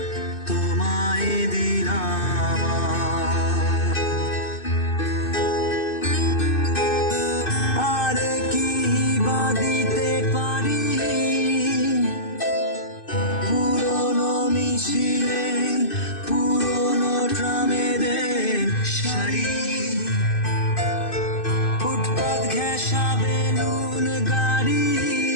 তোমায় দিলাম, আর কি বা দিতে পারি পুরনো মিছিলে পুরনো ট্রামেদের শাড়ি, ফুটপাত ঘেঁষা বেলুন গাড়ি,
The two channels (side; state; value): right; late; 2.6 ms